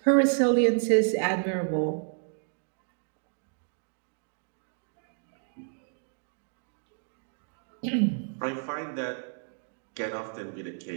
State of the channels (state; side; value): silent; left; digital silence